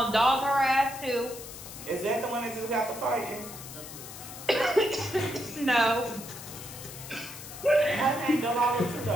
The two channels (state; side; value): noise; left; hiss, 13 dB below the sound